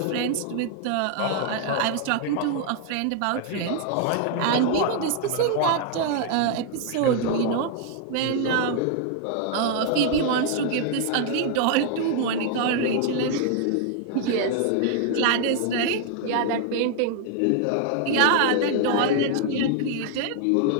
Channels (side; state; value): both; different; correlation 0.00